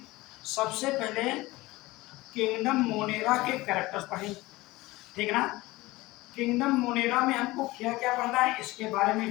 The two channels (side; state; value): right; quieter; 19.9 dB